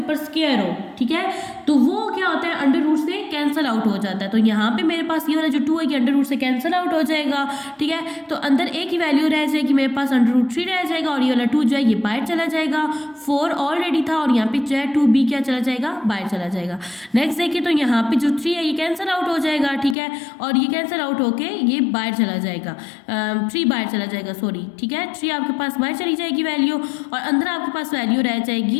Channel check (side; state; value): right; drops out; at 20.0 s